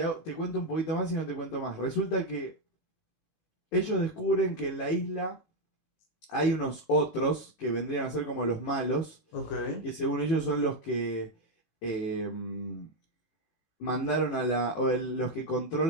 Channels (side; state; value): right; late; 18 ms